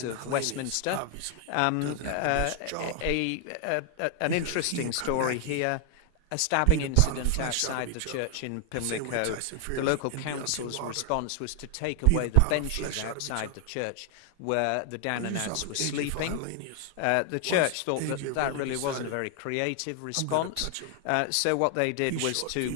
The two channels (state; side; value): different; both; correlation 0.00